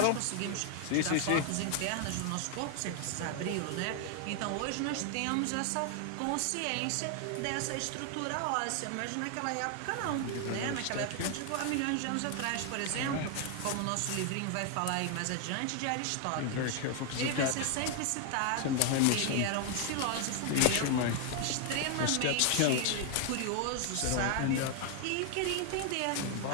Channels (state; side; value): different; both; correlation 0.00